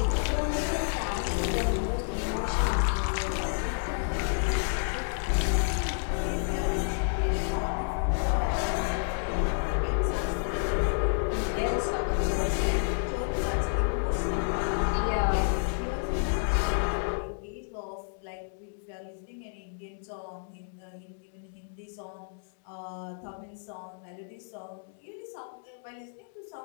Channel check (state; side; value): silent; right; digital silence